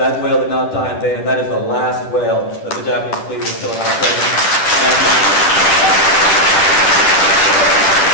whale did not die in vain, and that is the last whale that the Japanese fleet was still in our presence.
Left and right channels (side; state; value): right; late; 10 ms